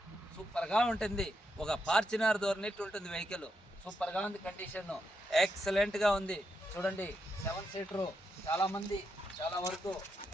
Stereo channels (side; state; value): both; normal; correlation 0.83